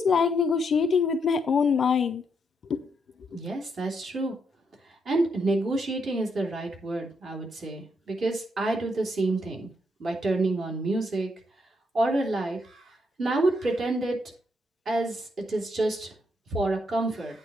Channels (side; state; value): both; normal; correlation 0.77